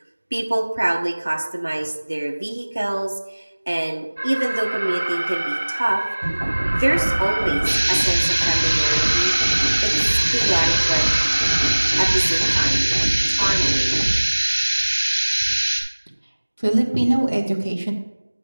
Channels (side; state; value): both; inverted; correlation -1.00